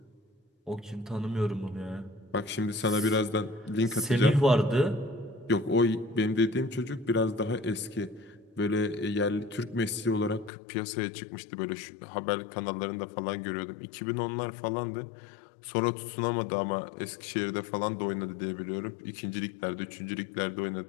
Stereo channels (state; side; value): drops out; right; at 10.5 s